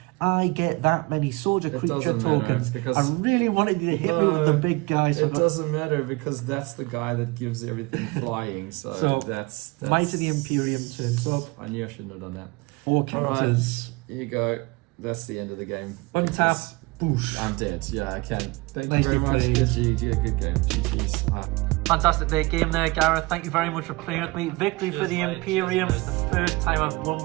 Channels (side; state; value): left; quieter; 24.2 dB